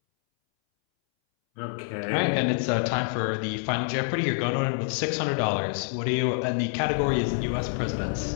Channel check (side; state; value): right; silent; 60 dB below the other